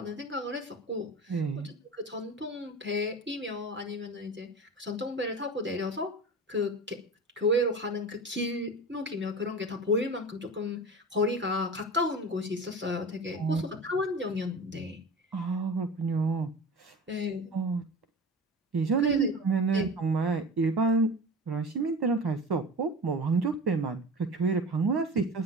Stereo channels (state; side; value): normal; both; correlation 0.33